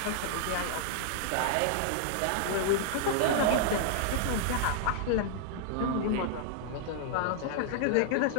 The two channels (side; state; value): both; different; correlation -0.01